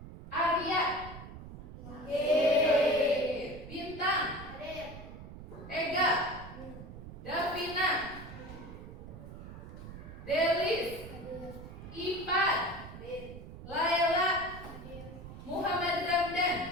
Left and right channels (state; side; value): noise; right; rumble, 13 dB below the sound